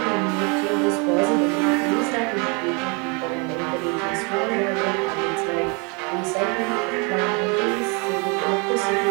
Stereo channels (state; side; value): quieter; left; 32.3 dB